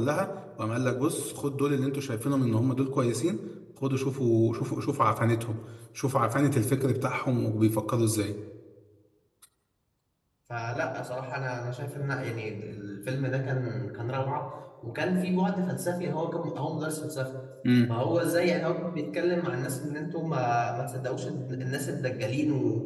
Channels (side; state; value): both; identical; correlation 1.00